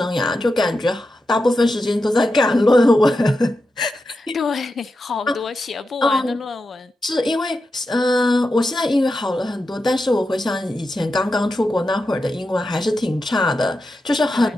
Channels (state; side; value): normal; both; correlation 0.89